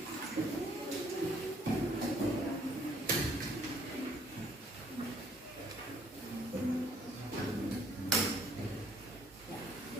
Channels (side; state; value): both; normal; correlation 0.65